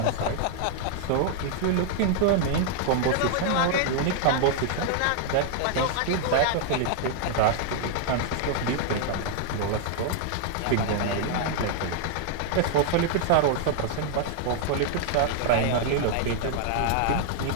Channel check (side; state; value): both; different; correlation 0.00